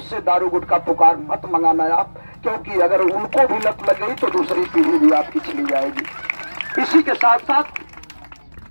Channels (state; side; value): inverted; both; correlation -1.00